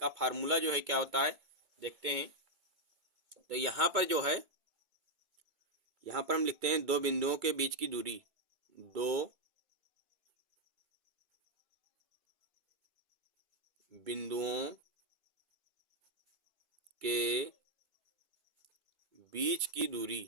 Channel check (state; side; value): late; left; 2.2 ms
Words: फार्मूला जो है क्या होता है देखते हैं। तो यहाँ पर जो है यहाँ पर हम लिखते हैं दो बिंदुओं के बीच की दूरी, दो बिंदुओं के बीच की